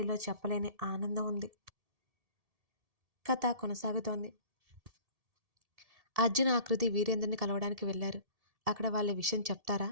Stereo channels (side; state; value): left; late; 1.7 ms